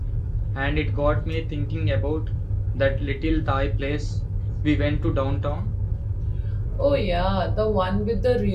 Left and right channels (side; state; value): both; identical; correlation 1.00